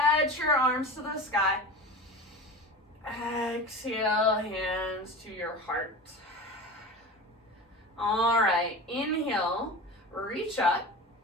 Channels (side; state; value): both; normal; correlation 0.31